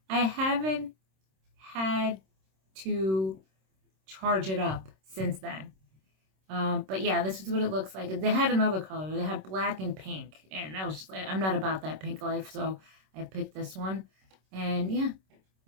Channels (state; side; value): late; left; 26 ms